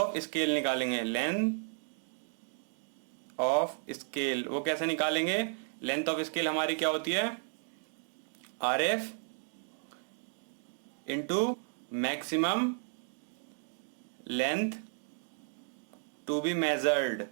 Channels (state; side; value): silent; left; 55 dB below the other